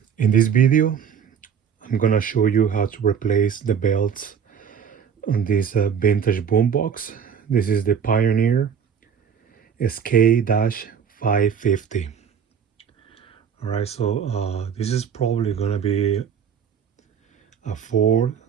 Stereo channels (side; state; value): left; quieter; 7.5 dB